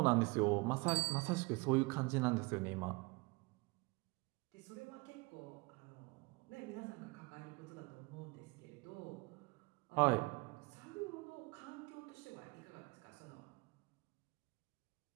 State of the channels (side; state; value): left; quieter; 25.7 dB